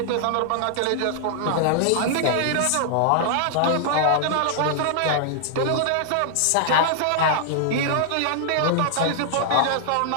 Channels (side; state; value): both; different; correlation -0.01